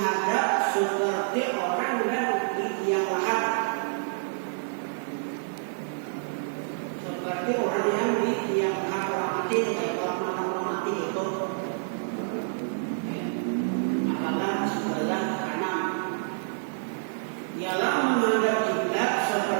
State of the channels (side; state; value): left; silent; 59 dB below the other